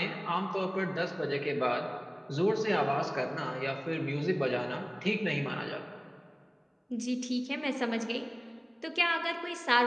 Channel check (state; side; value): identical; both; correlation 1.00